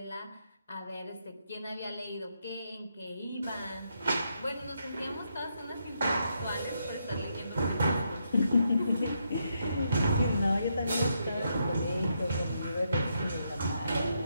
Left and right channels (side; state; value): both; inverted; correlation -0.79